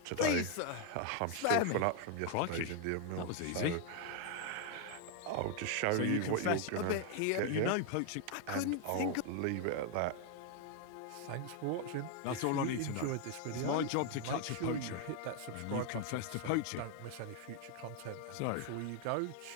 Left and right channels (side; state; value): both; different; correlation 0.01